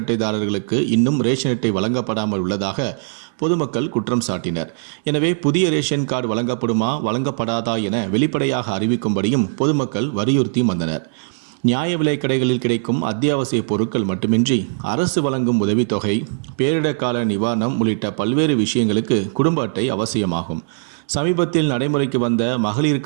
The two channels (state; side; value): silent; left; digital silence